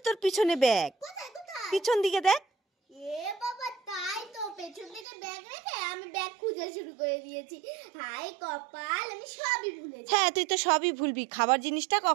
তোর পিছনে ব্যাগ। কোথায়? পিছন দিকে দেখ। এ বাবা, তাই তো, পেছন থেকে ব্যাগ রেখে আমি ব্যাগ খুঁজে শুরু করে দিয়েছি। হাই কপাল, আমি সবই ভুলেছি। হ্যাঁ, তুই তো সবই ভুলবি, খাবার জিনিসটা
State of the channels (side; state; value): left; drops out; at 5.1 s